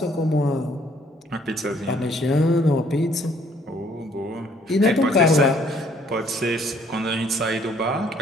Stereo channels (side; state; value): both; normal; correlation 0.63